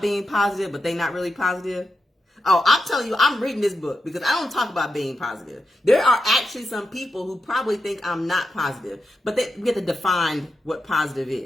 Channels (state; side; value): normal; both; correlation 0.87